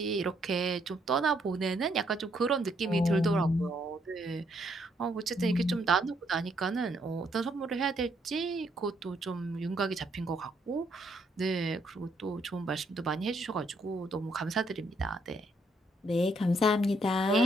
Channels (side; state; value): both; normal; correlation 0.72